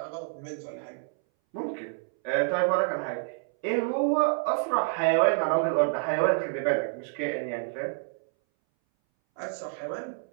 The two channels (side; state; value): left; silent; 59 dB below the other